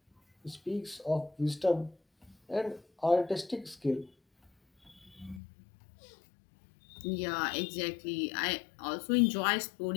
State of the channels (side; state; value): right; drops out; at 5.4 s